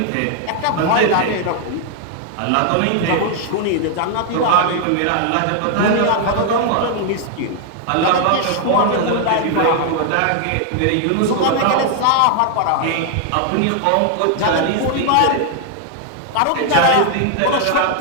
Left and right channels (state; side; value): different; both; correlation 0.00